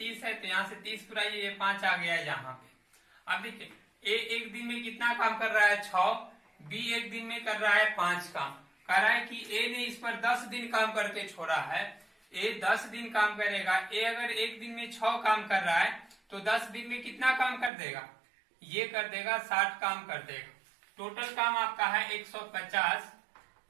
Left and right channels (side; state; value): left; drops out; at 17.7 s